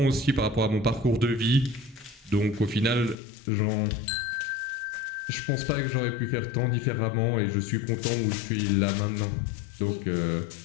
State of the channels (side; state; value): right; drops out; at 3.2 s